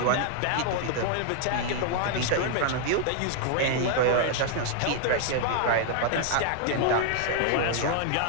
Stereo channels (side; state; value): both; different; correlation -0.01